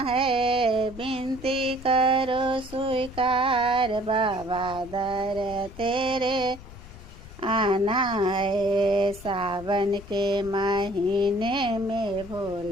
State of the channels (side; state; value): left; noise; rumble, 17 dB below the sound